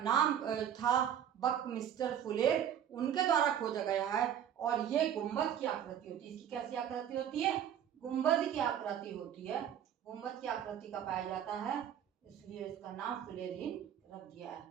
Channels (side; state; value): left; quieter; 9.6 dB